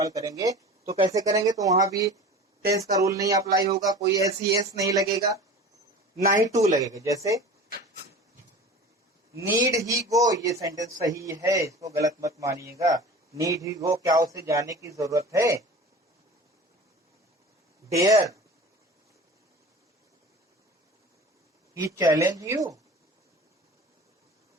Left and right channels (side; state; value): both; normal; correlation 0.37